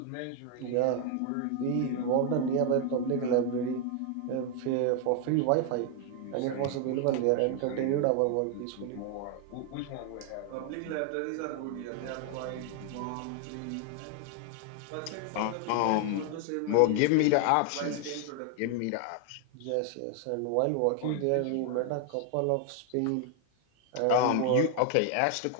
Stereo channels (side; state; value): both; different; correlation 0.00